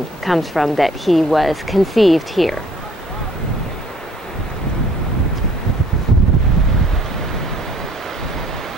comes from that he was conceived here.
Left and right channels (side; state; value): both; normal; correlation 0.57